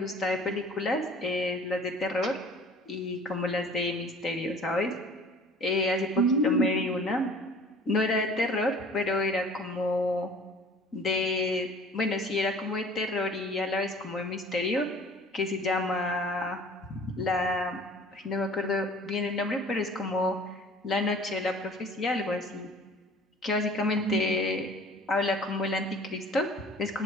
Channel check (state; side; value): normal; both; correlation 0.48